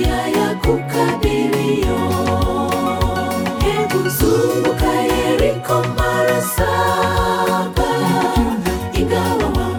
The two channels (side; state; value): both; identical; correlation 1.00